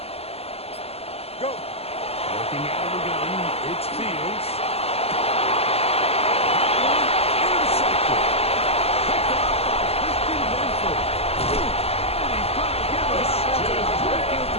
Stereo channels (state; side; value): late; right; 0.29 ms